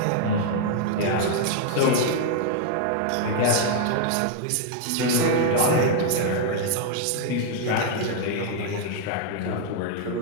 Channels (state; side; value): different; both; correlation 0.00